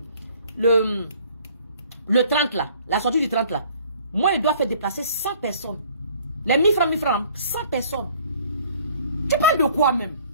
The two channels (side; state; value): both; inverted; correlation -0.56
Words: le 30 là, la sortie du 30 là. Moi, il doit faire déplacer 100 personnes. Les 1000 francs, 100 personnes. Tu parles de quoi même?